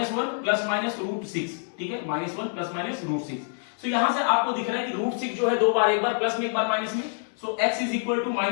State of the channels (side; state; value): right; silent; 59 dB below the other